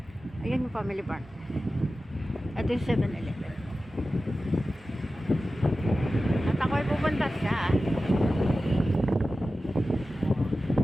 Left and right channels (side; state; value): both; normal; correlation 0.94